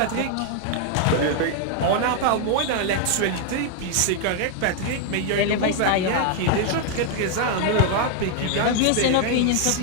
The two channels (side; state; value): both; different; correlation 0.00